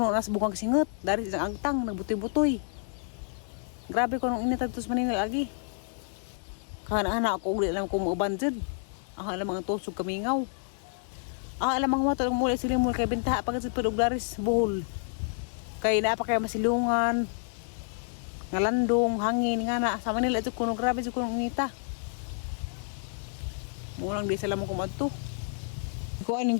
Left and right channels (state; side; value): silent; right; 58 dB below the other